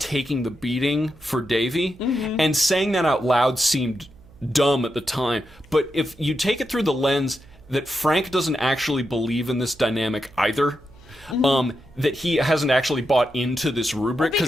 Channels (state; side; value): noise; right; hum, 25 dB below the sound